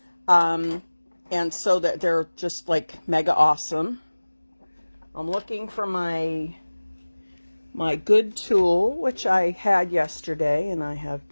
And so that they're just like mega awesome. I'm looking for my good tool, which I had yesterday, and I have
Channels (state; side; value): inverted; both; correlation -1.00